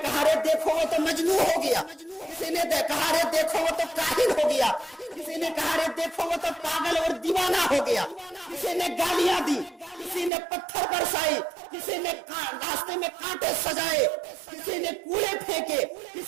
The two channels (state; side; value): drops out; left; at 10.3 s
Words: کہا رے دیکھو وہ تو مجنون ہو گیا، کسی نے کہا رے دیکھو وہ تو کاہل ہو گیا، کسی نے کہا رے دیکھو وہ تو پاگل اور دیوانہ ہو گیا، کسی نے گالیاں دی، کسی نے پتھر برسائی، کسی نے راستے میں کانٹے سجائے، کسی نے کوڑے پھینکے،